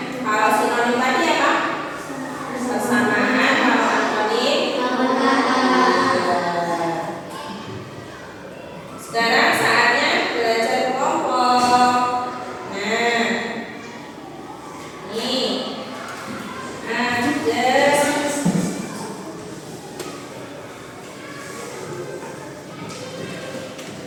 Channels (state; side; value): identical; both; correlation 1.00